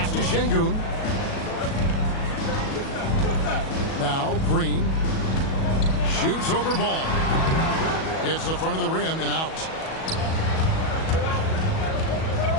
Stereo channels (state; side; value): late; right; 37 ms